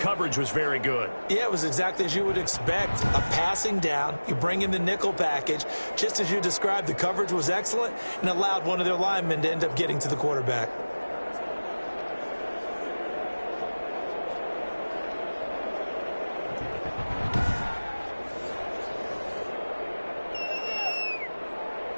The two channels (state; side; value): inverted; both; correlation -1.00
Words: coverage was very good. Yeah, it was exactly as you would expect. A passing down, you bring in the nickel package. Just as you described, the coverage was excellent and allowed one of their linemen to end up getting to the quarterback.